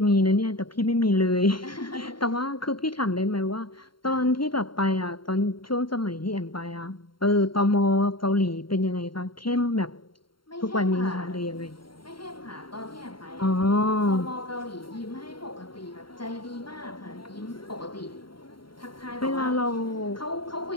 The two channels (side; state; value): right; late; 0.73 ms